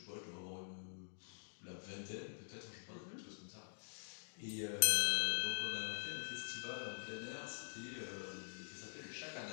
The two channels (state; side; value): silent; right; digital silence